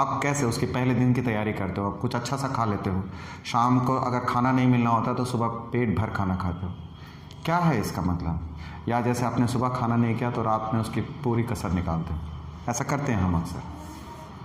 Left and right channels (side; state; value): both; identical; correlation 1.00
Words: कैसे उसके पहले दिन की तैयारी करते हो? आप कुछ अच्छा सा खा लेते हो, शाम को अगर खाना नहीं मिलना होता तो सुबह पेट भर खाना खाते हो। क्या है इसका मतलब? या जैसे आपने सुबह खाना नहीं किया तो रात में उसकी पूरी कसर निकालते हो। ऐसा करते हैं हम अक्सर,